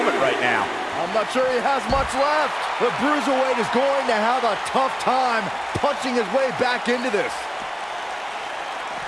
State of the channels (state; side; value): identical; both; correlation 1.00